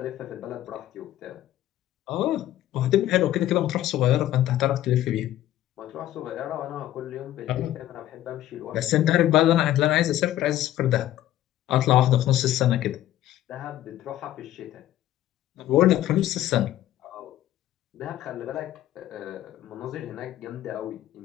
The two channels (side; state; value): right; quieter; 13.4 dB